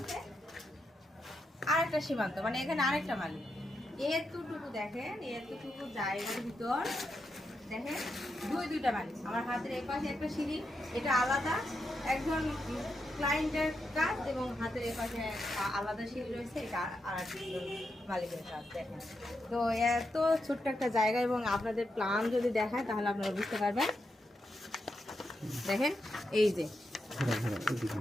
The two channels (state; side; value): normal; both; correlation 0.84